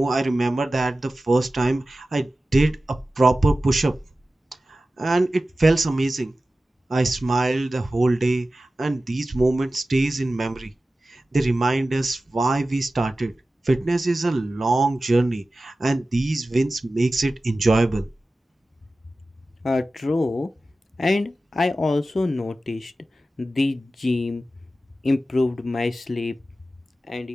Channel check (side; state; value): both; normal; correlation 0.95